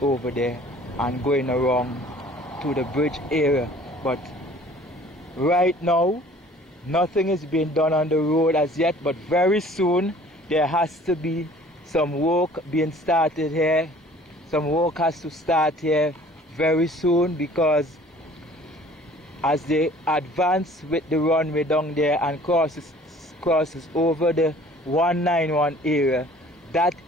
over there, and going around to the bridge area. But right now, nothing is being done on the road as yet, but very soon there has to be some work being started here. Some work has to start here very soon, because as they advance with the runway down there and crosses over the 191 area, that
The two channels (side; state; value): both; normal; correlation 0.51